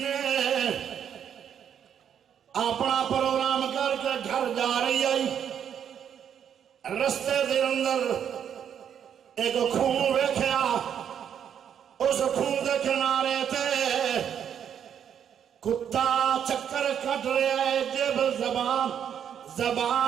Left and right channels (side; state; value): left; quieter; 8.7 dB